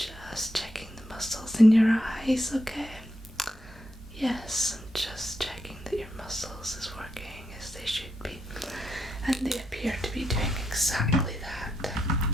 checking the muscles in your eyes, okay? Yes, I'm just checking that your muscles is working as they should be. And they appear to be doing exactly that.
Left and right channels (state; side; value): normal; both; correlation 0.82